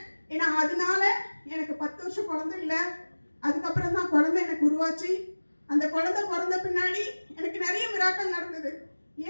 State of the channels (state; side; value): inverted; both; correlation -1.00